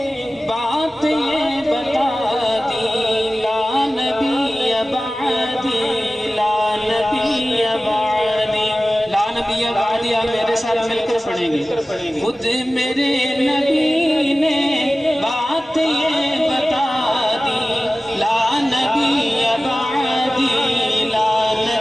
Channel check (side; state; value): both; normal; correlation 0.96